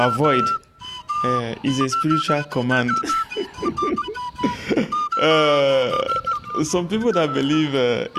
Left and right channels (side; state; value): both; identical; correlation 1.00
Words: It's a spiritual command. Some people that believe